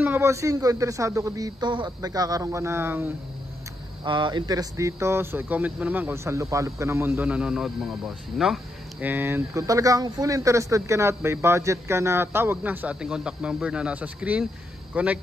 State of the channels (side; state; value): both; normal; correlation 0.81